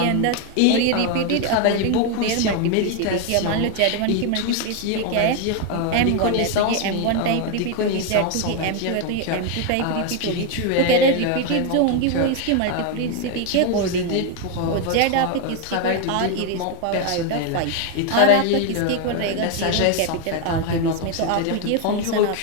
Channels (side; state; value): both; different; correlation 0.01